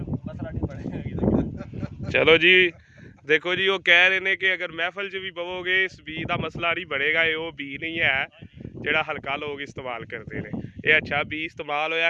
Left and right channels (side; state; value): both; identical; correlation 1.00